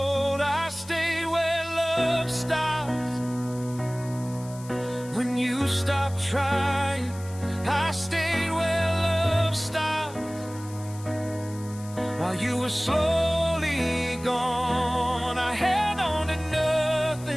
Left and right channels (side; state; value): left; noise; hiss, 19 dB below the sound